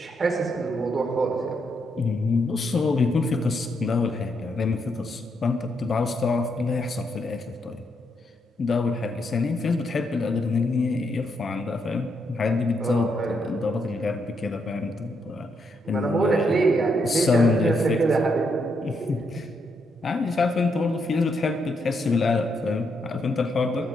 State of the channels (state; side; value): normal; both; correlation 0.78